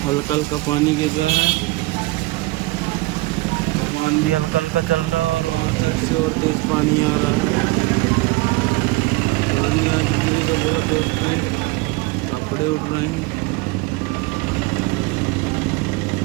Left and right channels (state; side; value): quieter; left; 21.8 dB